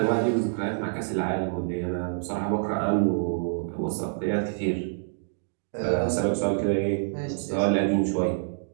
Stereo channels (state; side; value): silent; left; digital silence